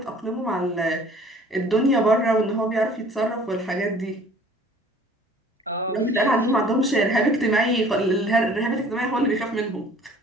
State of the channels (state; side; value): normal; both; correlation 0.52